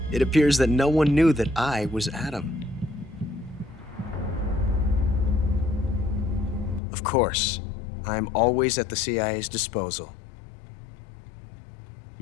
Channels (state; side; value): drops out; right; at 6.8 s